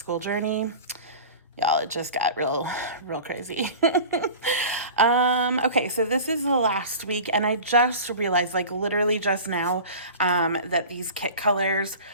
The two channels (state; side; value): inverted; both; correlation -0.36